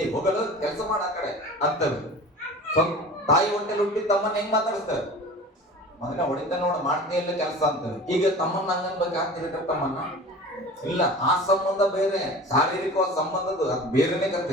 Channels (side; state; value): both; normal; correlation 0.38